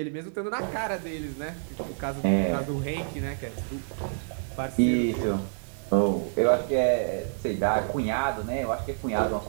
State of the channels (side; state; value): left; silent; digital silence